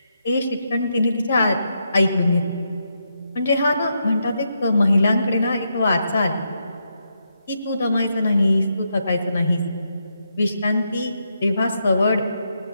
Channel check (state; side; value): inverted; both; correlation -0.81